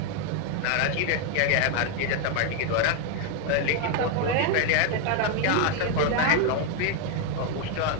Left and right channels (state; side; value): different; both; correlation 0.01